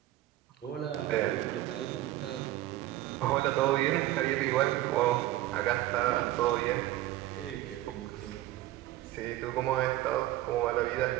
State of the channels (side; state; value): left; quieter; 15.5 dB